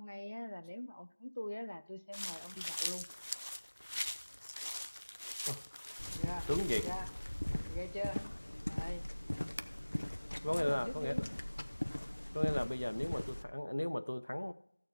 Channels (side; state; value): both; inverted; correlation -1.00